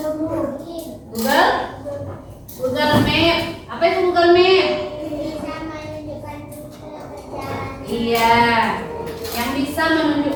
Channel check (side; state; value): both; identical; correlation 1.00